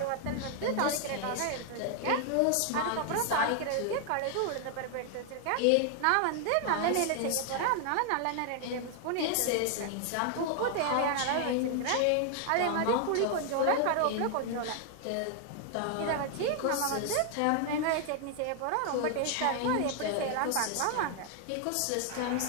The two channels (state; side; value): different; both; correlation 0.00